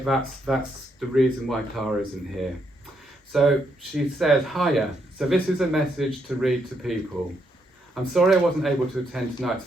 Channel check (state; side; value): normal; both; correlation 0.77